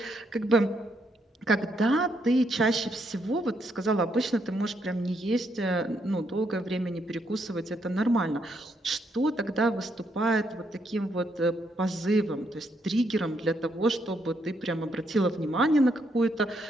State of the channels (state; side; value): normal; both; correlation 0.76